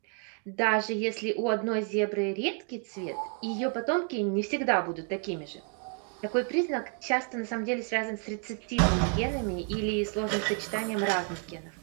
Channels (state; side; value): quieter; left; 39.0 dB